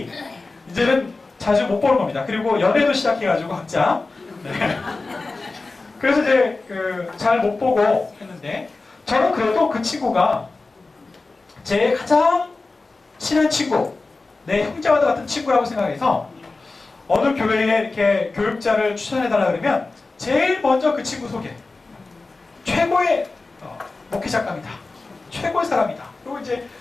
이제는 자주 못 보는 겁니다. 그리고 연애도 시작해가지고 각자. 네. 그래서 이제 잘 못 보고 했는데, 저는 그래도 그 친구가 제 가장 친한 친구, 내 형제와도 같은 친구라고 생각해서 어느 교회에 이렇게 교육자를 추천해달라 그러면 제일 먼저 그 친구 소개. 최고의 목회작가입니다. 최고의 사람이다. 그리고 이제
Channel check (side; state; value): right; quieter; 3.6 dB